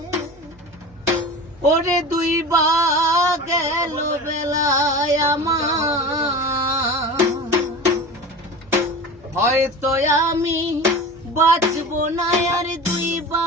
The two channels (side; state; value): right; noise; hum, 27 dB below the sound